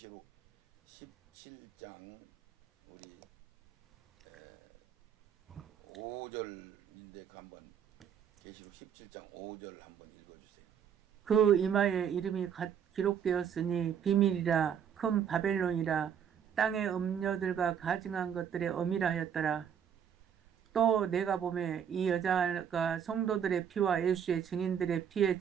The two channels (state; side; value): quieter; left; 8.2 dB